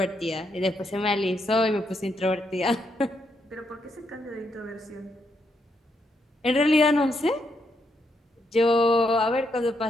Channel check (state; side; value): normal; both; correlation 0.78